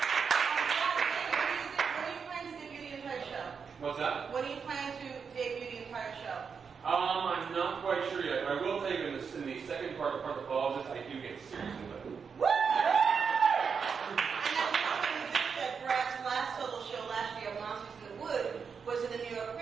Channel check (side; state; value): left; quieter; 6.0 dB